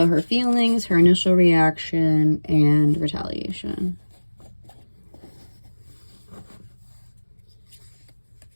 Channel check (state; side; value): inverted; both; correlation -1.00